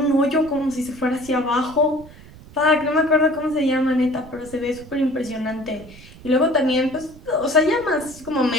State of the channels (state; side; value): noise; right; rumble, 20 dB below the sound